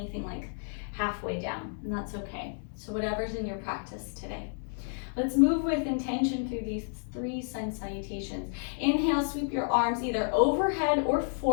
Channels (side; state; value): right; silent; digital silence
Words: like halfway down, and that's okay. So whatever's in your practice today. Let's move with intention through these 3 sun salutations. Inhale, sweep your arms either overhead or